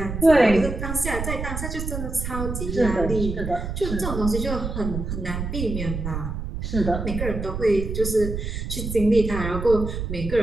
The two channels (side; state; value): right; noise; rumble, 5 dB below the sound